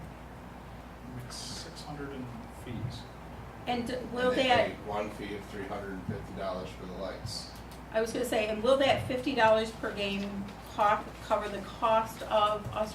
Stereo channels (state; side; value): identical; both; correlation 1.00